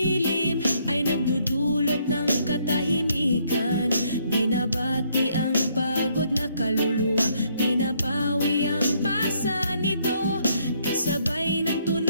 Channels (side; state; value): both; inverted; correlation -0.69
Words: ay nagdudulot ng katahimikan. Binabati ang pagod na kaluluwa, pinapawi ang pasa nito. Kasabay ng